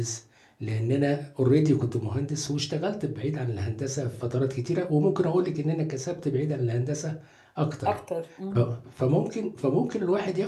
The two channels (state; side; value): identical; both; correlation 1.00